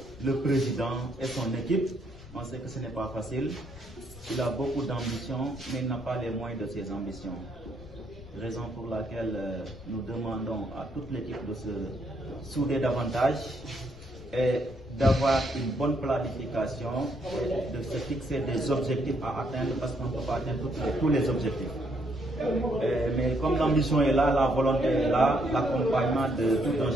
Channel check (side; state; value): left; noise; rumble, 18 dB below the sound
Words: le président et son équipe. On sait que ce n'est pas facile. Il a beaucoup d'ambition, mais il n'a pas les moyens de ses ambitions. Raison pour laquelle nous demandons à toute l'équipe de se souder davantage et d'avoir une bonne planification, et de se fixer des objectifs à atteindre, parce qu'on ne peut pas atteindre tous les objectifs. Mais comme l'ambition est là, la volonté est là, l'accompagnement de tout un